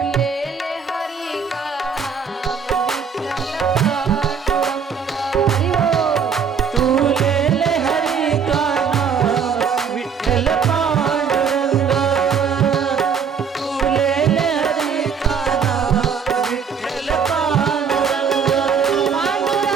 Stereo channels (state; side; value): quieter; left; 6.5 dB